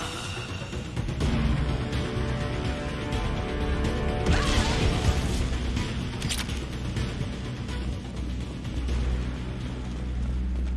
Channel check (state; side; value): identical; both; correlation 1.00